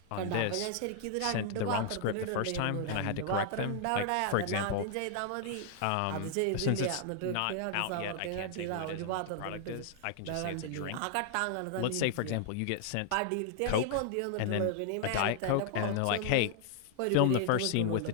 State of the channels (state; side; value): different; both; correlation 0.00